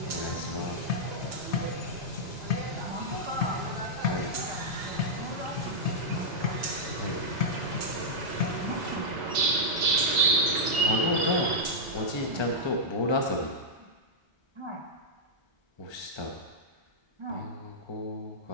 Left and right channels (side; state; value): both; normal; correlation -0.08